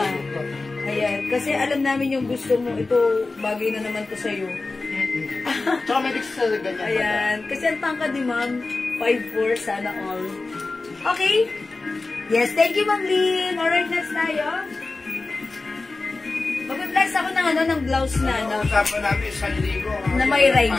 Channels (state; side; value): quieter; right; 3.5 dB